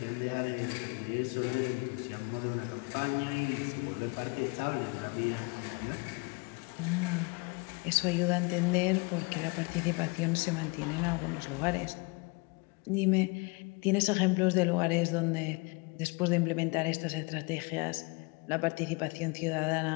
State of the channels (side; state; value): right; quieter; 29.2 dB